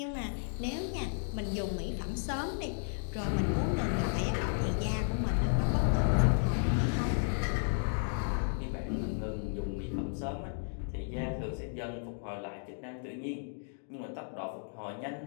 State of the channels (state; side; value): silent; right; digital silence